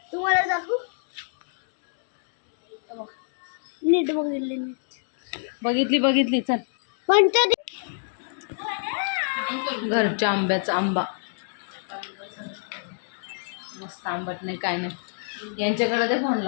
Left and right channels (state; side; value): silent; right; digital silence